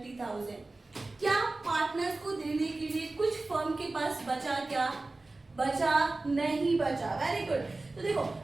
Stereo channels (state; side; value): quieter; left; 3.2 dB